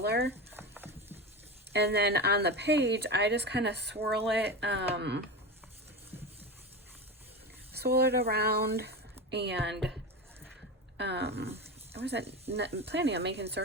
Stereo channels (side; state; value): both; normal; correlation 0.23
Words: And then on the page, I just kind of swirl it around, and I wasn't planning on making